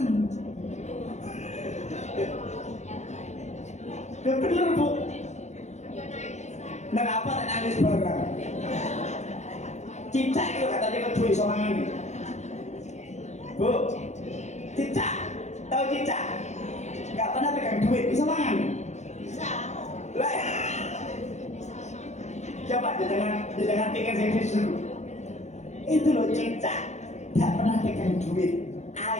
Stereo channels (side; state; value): right; late; 0.33 ms